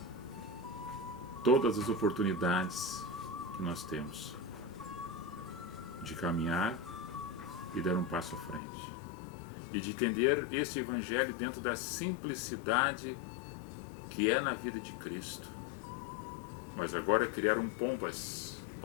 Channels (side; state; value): right; drops out; at 8.6 s